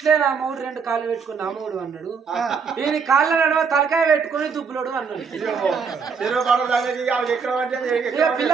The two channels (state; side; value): quieter; left; 5.8 dB